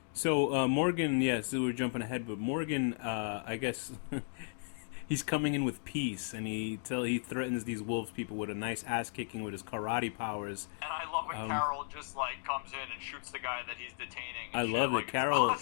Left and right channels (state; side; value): silent; right; digital silence